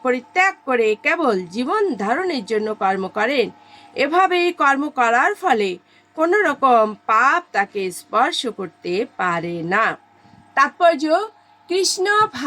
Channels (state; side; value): identical; both; correlation 1.00